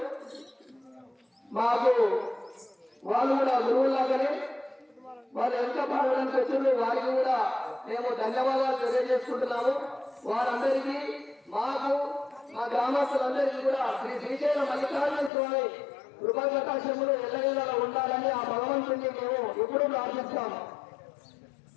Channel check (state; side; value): drops out; right; at 15.3 s